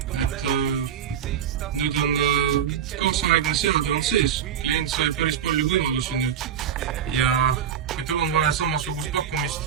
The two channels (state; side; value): quieter; left; 8.7 dB